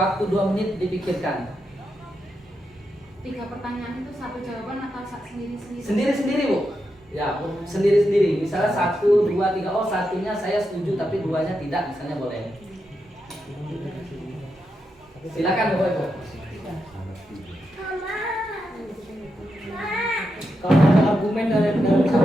2 menit dipikirkan. 3 pertanyaan itu 1 jawaban atau sendiri-sendiri? Sendiri-sendiri Bu. Ya, sendiri-sendiri. Misalnya 1, 2, 3. Oh, satunya saya setuju tapi 2-nya tidak, misalnya boleh. Silakan Bapak Ibu. Kalau ada argumen dari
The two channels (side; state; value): both; normal; correlation 0.85